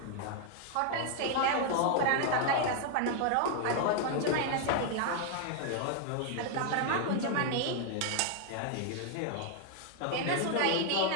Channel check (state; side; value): different; both; correlation 0.00